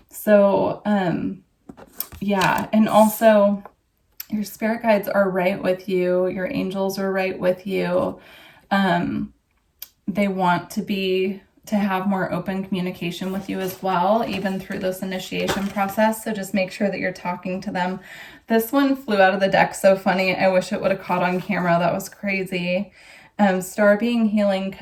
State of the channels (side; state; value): both; identical; correlation 1.00